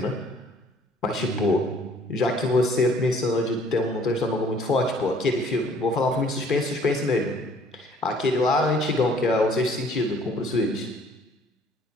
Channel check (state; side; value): normal; both; correlation 0.58